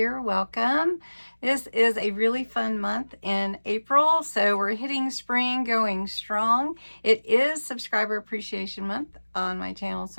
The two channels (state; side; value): inverted; both; correlation -1.00